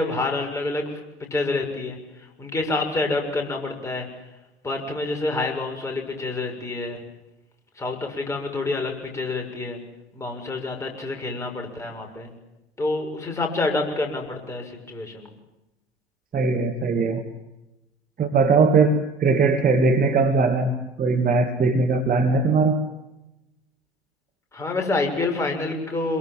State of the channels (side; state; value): both; normal; correlation 0.50